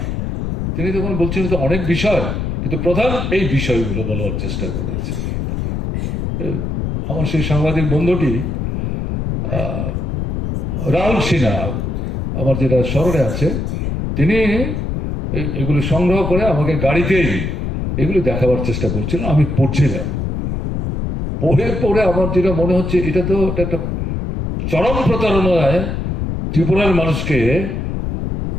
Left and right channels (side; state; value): left; noise; rumble, 2 dB below the sound